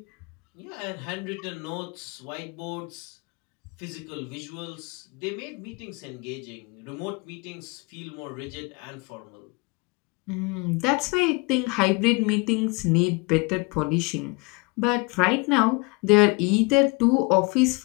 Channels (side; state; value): right; quieter; 27.4 dB